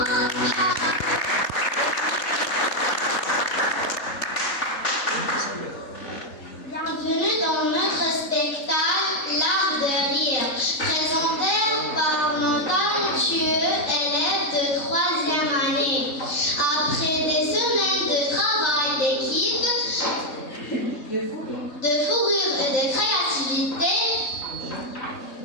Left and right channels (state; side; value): late; right; 4.2 ms